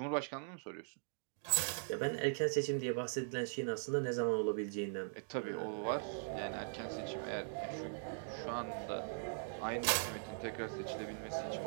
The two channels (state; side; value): silent; left; digital silence